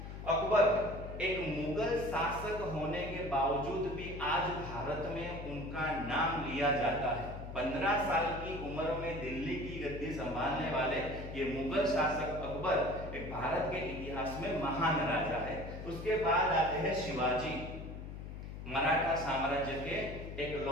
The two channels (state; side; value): noise; left; hum, 9 dB below the sound